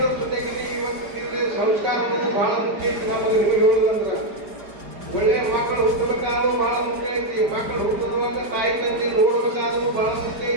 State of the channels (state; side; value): late; left; 4.9 ms